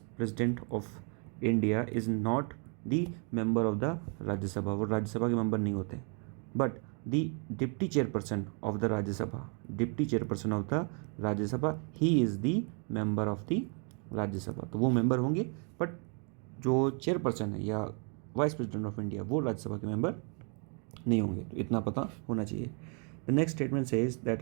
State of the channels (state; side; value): quieter; left; 37.9 dB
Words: president of India is not the member of the Rajya Sabha. वो राज्यसभा के मेंबर नहीं होते. But the deputy chairperson of the Rajya Sabha he is the member of the Rajya Sabha. तो वो मेंबर होंगे, बट जो चेयरपर्सन है या वाइस प्रेसिडेंट ऑफ इंडिया वो राज्यसभा के मेंबर नहीं होंगे. तो इतना पता होना चाहिए. The next statement says that